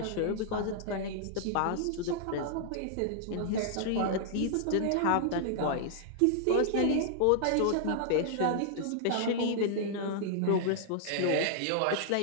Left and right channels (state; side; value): different; both; correlation -0.01